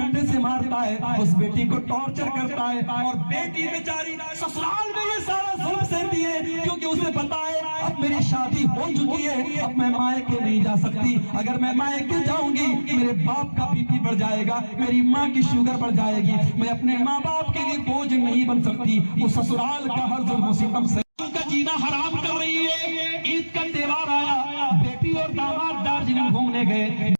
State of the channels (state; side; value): inverted; both; correlation -1.00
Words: سے مارتا ہے, اس بیٹی کو ٹارچر کرتا ہے, اور بیٹی بیچاری سسرال میں یہ سارا ظلم سہتی ہے کیونکہ اسے پتا ہے اب میری شادی ہو چکی ہے, اب میں مائکے نہیں جا سکتی. اگر میں مائکے جاؤں گی میرے باپ کا بی پی بڑھ جائے گا, میری ماں کی شوگر بڑھ جائے گی, میں اپنے ماں باپ کے لیے بوجھ نہیں بن سکتی. وہ سسرال کا ہر ظلم و ستم سے کا جینا حرام کر رہی ہے. عید کا تہوار آیا, بیٹی اور داماد دارجلنگ گھومنے گئے,